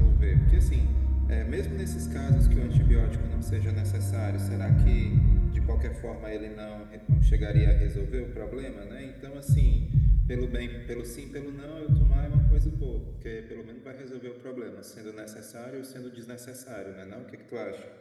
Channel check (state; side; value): identical; both; correlation 1.00